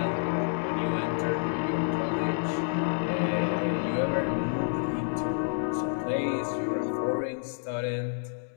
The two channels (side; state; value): right; silent; digital silence